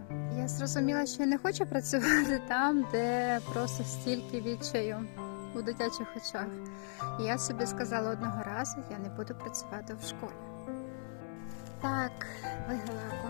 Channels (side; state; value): right; silent; 53 dB below the other